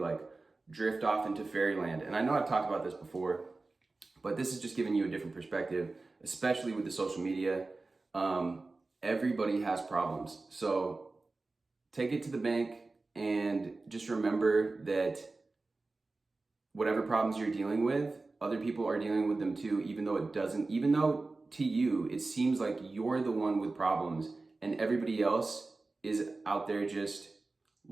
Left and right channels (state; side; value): quieter; left; 3.5 dB